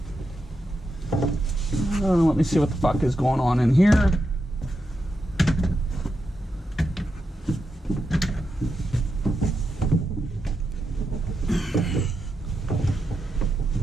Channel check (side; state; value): both; normal; correlation 0.86